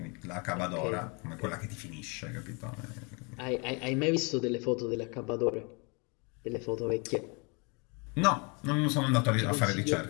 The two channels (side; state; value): right; quieter; 31.9 dB